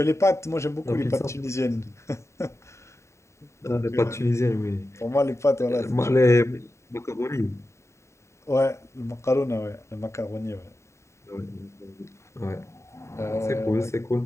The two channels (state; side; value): late; right; 0.14 ms